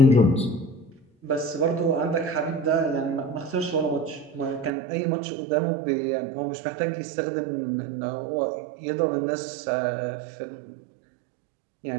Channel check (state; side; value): drops out; left; at 4.7 s